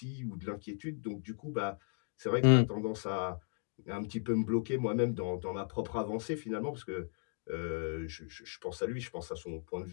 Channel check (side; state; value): right; silent; 54 dB below the other